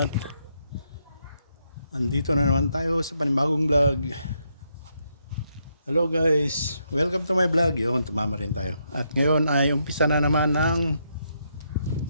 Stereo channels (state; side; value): inverted; both; correlation -0.78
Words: andito na naman tayo sa panibagong vlog. Hello guys, welcome to my vlog. Yun, tumama rin tayo. At ngayon ay umpisa na naman ng